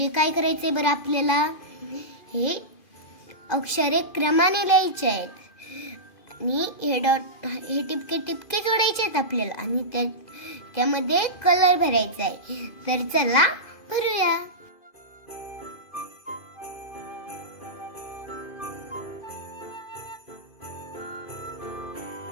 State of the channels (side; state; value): right; late; 2.5 ms